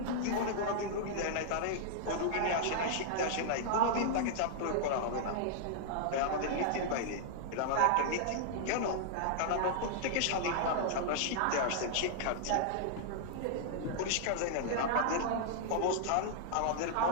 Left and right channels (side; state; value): both; different; correlation -0.01